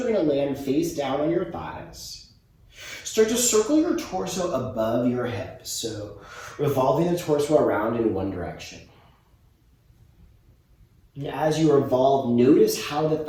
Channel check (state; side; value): identical; both; correlation 1.00